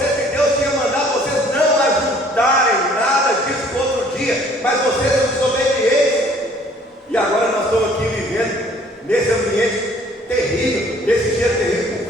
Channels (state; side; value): normal; both; correlation 0.57